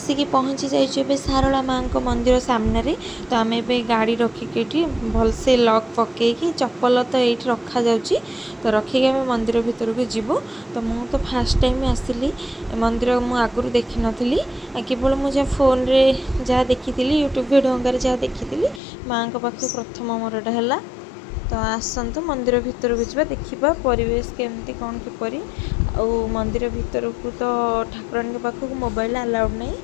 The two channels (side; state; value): right; drops out; at 18.8 s